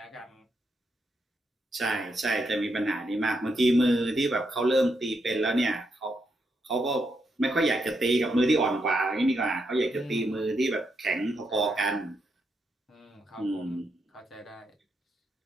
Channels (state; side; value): normal; both; correlation 0.81